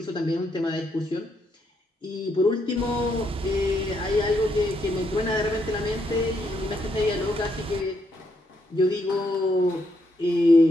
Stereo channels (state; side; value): normal; both; correlation 0.77